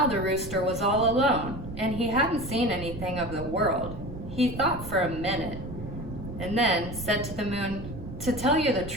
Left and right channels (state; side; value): noise; right; rumble, 11 dB below the sound